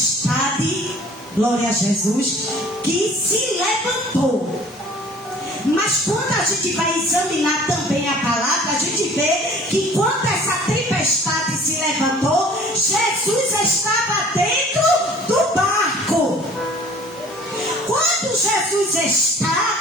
glória a Jesus, que se levantou. Mas quando a gente vai examinar também a palavra, a gente vê que quando essa tempestade se levantou, Jesus estava dentro do barco. Quando Jesus está,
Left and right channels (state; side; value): normal; both; correlation 0.50